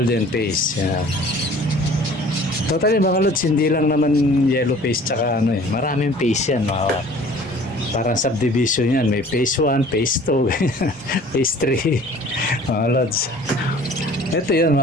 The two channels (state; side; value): normal; both; correlation 0.49